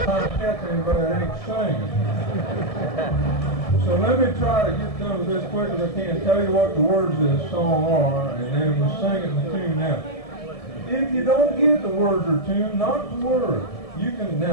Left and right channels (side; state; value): right; late; 1.7 ms